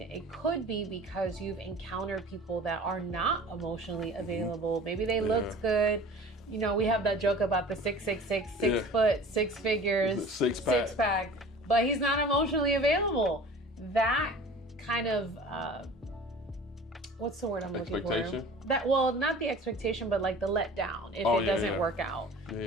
it could be because you've encountered people that are not emotionally available. Maybe they looked good. We have that joke about the 6'6", 6 foot, 6 figures, six pack, but he's not emotionally available. That kind of what's the word I'm looking for? Not the expectation, but like the letdown if it doesn't work out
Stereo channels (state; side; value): normal; both; correlation 0.42